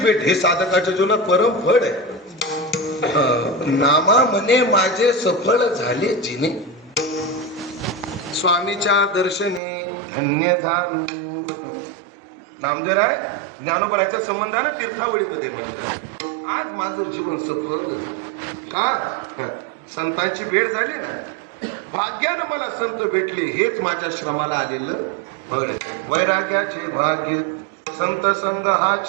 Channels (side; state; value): left; drops out; at 9.6 s